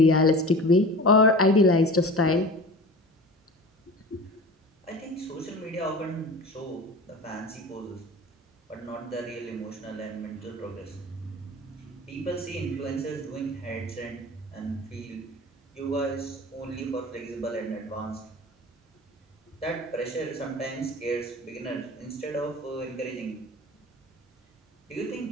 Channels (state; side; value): normal; both; correlation 0.36